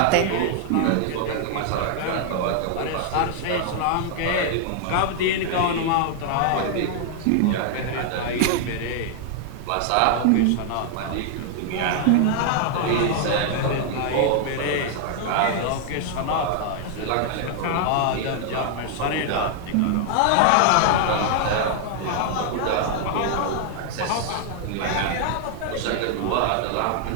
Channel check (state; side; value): different; both; correlation 0.00